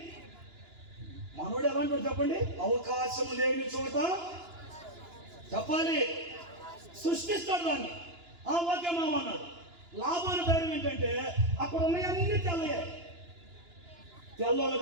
మనోడు. ఎలాంటి చెప్పండి, అవకాశం లేని చోట చెప్పాలి, సృష్టిస్తాడు దాన్ని. ఓకే మామ అన్నాడు. లాభాన్ని ధైర్యం ఏంటంటే అక్కడ ఉన్నాయన్నీ తెల్లయ్యాయి.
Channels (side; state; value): left; late; 2.9 ms